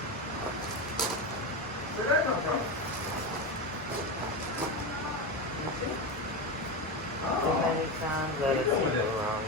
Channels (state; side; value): normal; both; correlation 0.17